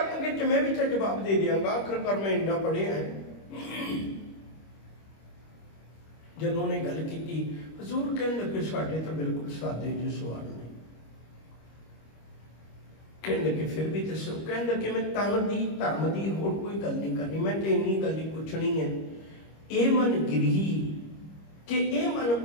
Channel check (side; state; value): right; late; 25 ms